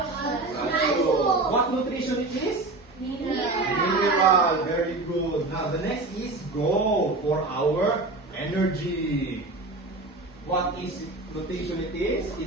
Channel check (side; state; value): left; quieter; 3.2 dB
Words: What nutrition it is? Mineral. Very good. Now the next is go for our energy. What is nutrition it is?